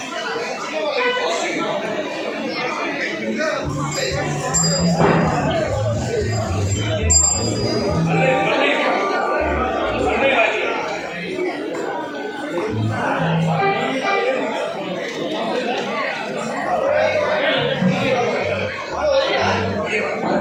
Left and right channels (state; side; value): identical; both; correlation 1.00